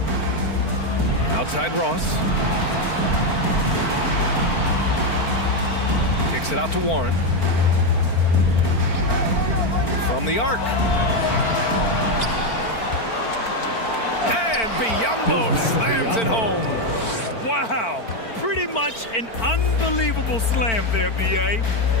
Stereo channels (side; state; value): right; late; 4.4 ms